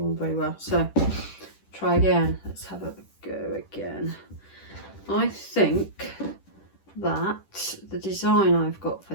on very well, so try again. Let's have a go again. I think that the design I've got for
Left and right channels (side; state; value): right; late; 10 ms